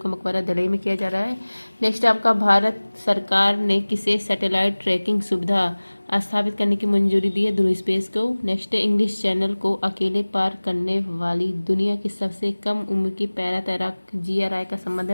मकबरा दिल्ली में किया जा रहा है। नेक्स्ट आपका भारत सरकार ने किसे सैटेलाइट ट्रैकिंग सुविधा स्थापित करने की मंजूरी दी है? ध्रुव स्पेस को। नेक्स्ट है इंग्लिश चैनल को अकेले पार करने वाली दुनिया की सबसे कम उम्र की पैरा तैराक जिया राय का संबंध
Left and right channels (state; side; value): inverted; both; correlation -1.00